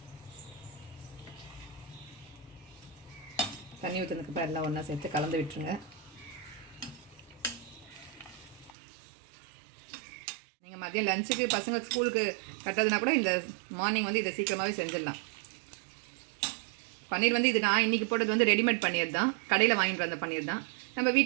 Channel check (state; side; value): drops out; left; at 8.8 s